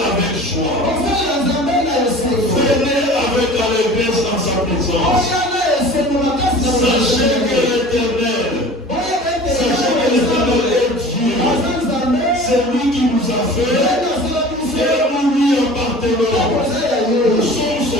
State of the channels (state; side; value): normal; both; correlation 0.42